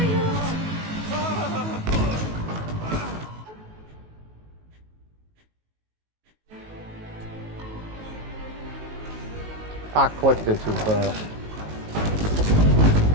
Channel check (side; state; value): left; late; 19 ms